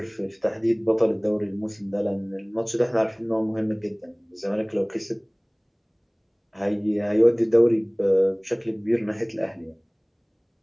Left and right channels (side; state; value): both; identical; correlation 1.00